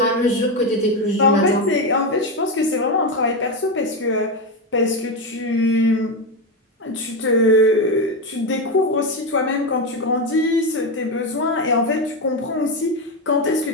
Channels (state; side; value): normal; both; correlation 0.12